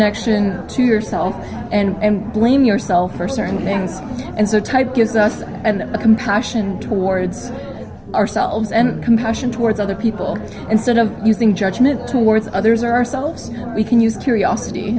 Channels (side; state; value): both; identical; correlation 1.00